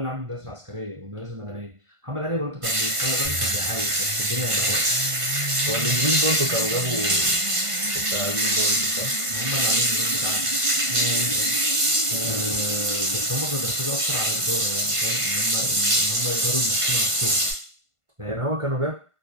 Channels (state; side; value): late; left; 1.5 ms